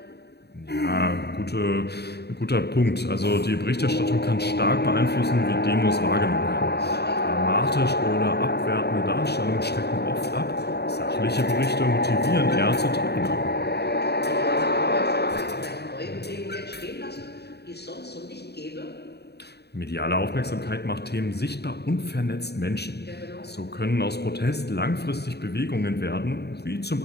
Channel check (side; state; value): right; late; 0.48 ms